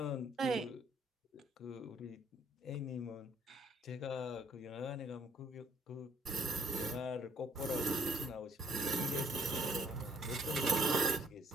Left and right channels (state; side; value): normal; both; correlation 0.65